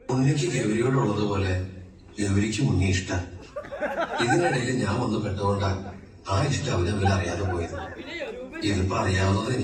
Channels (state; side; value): identical; both; correlation 1.00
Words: ഉണ്ണിക്ക് ഗൗരിയോടുള്ളതുപോലെ ഗൗരിക്ക് ഉണ്ണി ഇഷ്ടം. ഇതിനിടയിൽ ഞാൻ വന്ന് പെട്ടുകൊണ്ടാ ആ ഇഷ്ടം അവരവരെ അറിയാതെ പോയത്. ഇതിപ്പോ അറിയാവുന്നത്